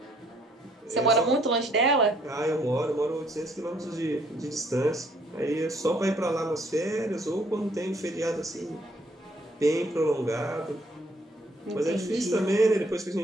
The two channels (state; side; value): normal; both; correlation 0.65